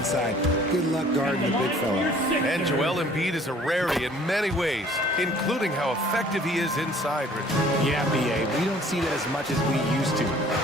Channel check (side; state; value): both; normal; correlation 0.54